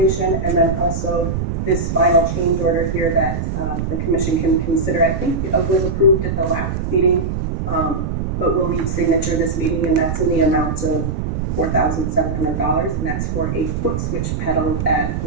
and then also this final change order here that the commission can consider. I think it was approved at the last meeting, but we'll need signature this meeting, and that's in the amount of $4,700, and that's for a foot switch pedal that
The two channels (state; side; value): noise; right; rumble, 2 dB below the sound